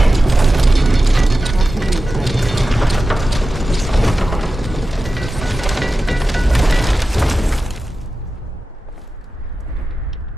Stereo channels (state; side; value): normal; both; correlation 0.93